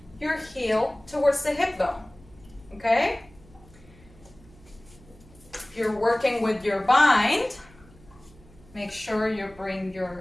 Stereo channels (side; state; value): right; noise; hum, 24 dB below the sound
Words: your heel towards the hip bone. Okay? If you're working with your bind, make sure you bring